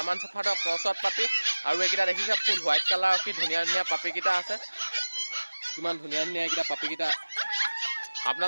शेफাৰ্ডৰ क्रॉसত पापी और एकिटा देखिছে फुल व्हाइट कलर की धुनिया धुनिया पापी किटा আছে किमान धुनिया धुनिया एकिटा पापी किटा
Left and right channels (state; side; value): inverted; both; correlation -1.00